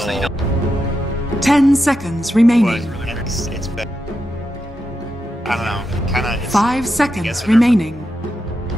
So you don't- 10 seconds But remaining. it's better. I don't know. Kind of. 5 seconds remaining.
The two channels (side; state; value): both; normal; correlation 0.87